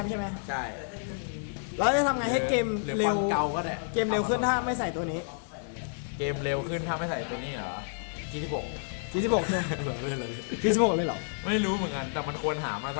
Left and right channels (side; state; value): right; silent; digital silence